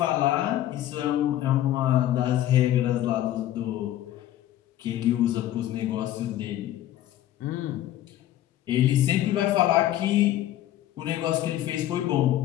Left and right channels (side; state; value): right; quieter; 13.1 dB